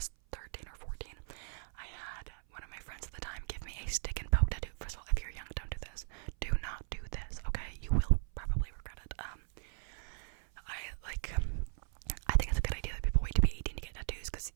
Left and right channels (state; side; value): silent; left; 53 dB below the other